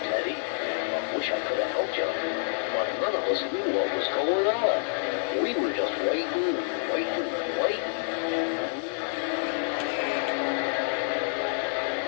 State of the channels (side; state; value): right; silent; digital silence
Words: I wish I could have helped you, but none of us knew what was going on. We were just waiting.